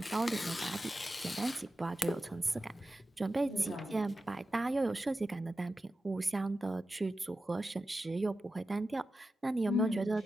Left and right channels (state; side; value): normal; both; correlation 0.92